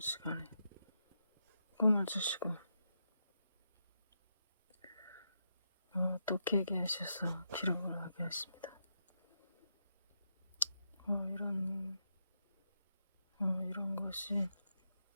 꿈을 주시고 또 깨게 하셔서 기록을 하게 하십니다. 이런 것이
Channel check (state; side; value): inverted; both; correlation -0.83